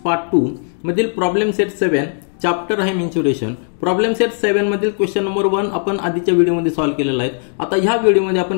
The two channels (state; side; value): silent; right; digital silence